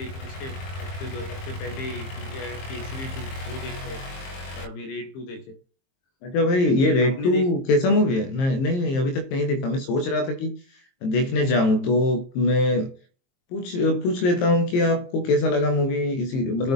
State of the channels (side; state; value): right; late; 23 ms